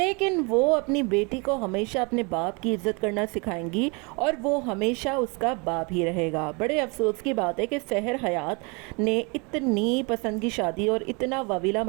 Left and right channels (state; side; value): quieter; left; 30.7 dB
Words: वो अपनी बेटी को हमेशा अपने बाप की इज्जत करना सिखाएंगी और वो हमेशा उसका बाप ही रहेगा। बड़े अफसोस की बात है कि सहर हयात ने इतनी पसंद की शादी और इतना वाविला